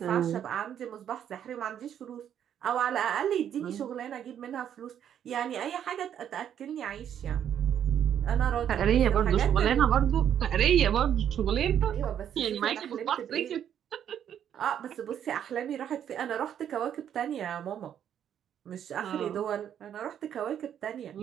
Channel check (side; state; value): left; quieter; 9.5 dB